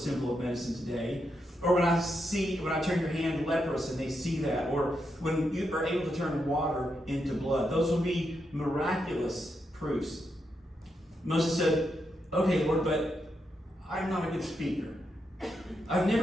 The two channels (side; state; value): both; normal; correlation 0.83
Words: of medicine today. Or when I turn your hand leprous and they see that. Or when you are able to turn water into blood. Those will be miraculous proofs. Moses said, "Okay, Lord, but I'm not a good speaker. I've